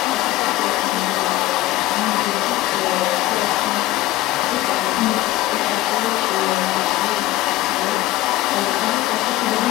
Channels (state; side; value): quieter; right; 16.6 dB